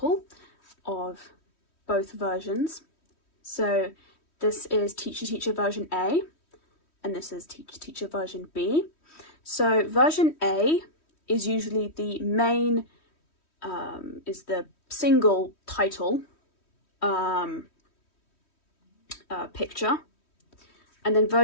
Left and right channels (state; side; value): late; right; 3.1 ms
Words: of both versions. So this is Teacher Teacher version A, and this is Teacher Teacher version B. So version A is usually the main, is the single title picture, and then